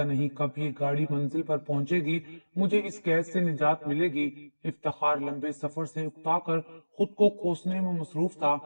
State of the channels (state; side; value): inverted; both; correlation -1.00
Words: نہیں کب یہ گاڑی منزل پر پہنچے گی، مجھے اس قید سے نجات ملے گی۔ افتخار لمبے سفر سے اکتا کر خود کو کوسنے میں مصروف تھا